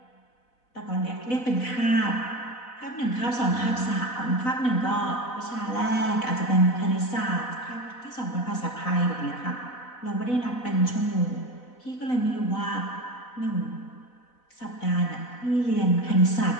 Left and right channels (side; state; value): right; late; 4.0 ms